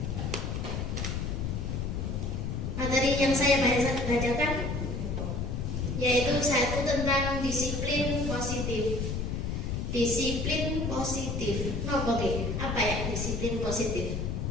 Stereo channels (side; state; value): left; noise; rumble, 2 dB below the sound